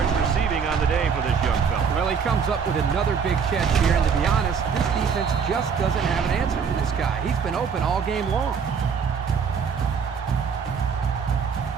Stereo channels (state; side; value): quieter; left; 6.4 dB